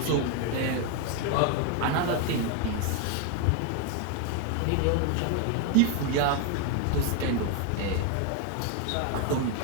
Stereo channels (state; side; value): different; both; correlation 0.01